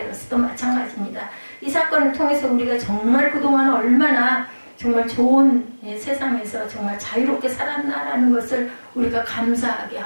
마찬가지입니다. 이 사건을 통해서 우리가 정말 그동안 얼마나 정말 좋은 세상에서 정말 자유롭게 살았나라는 것을 우리가 감사하게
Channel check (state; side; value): inverted; both; correlation -1.00